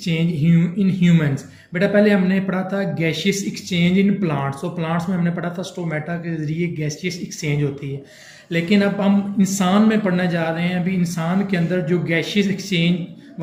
इन ह्यूमंस। बेटा पहले हमने पढ़ा था गैशियस एक्सचेंज इन प्लांट्स। तो प्लांट्स में हमने पढ़ा था स्टोमेटा के जरिए गैशियस एक्सचेंज होती है। लेकिन अब हम इंसान में पढ़ने जा रहे हैं। अभी इंसान के अंदर जो गैशियस एक्सचेंज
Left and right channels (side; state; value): both; identical; correlation 1.00